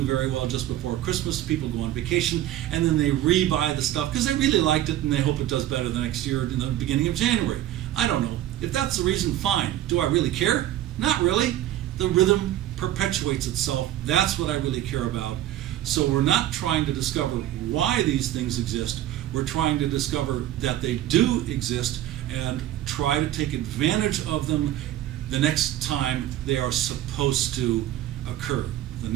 very well just before Christmas. People go on vacation and then they rebuy the stuff because they really liked it and they hope it does better the next year in the beginning of January. I don't know. If that's the reason, fine. Do I really care? Not really. The rhythm perpetuates itself. That's what I really care about. So we're not trying to discover why these things exist. We're trying to discover that they do exist and try to take advantage of them the next time they are supposed to occur. The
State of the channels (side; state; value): left; quieter; 13.2 dB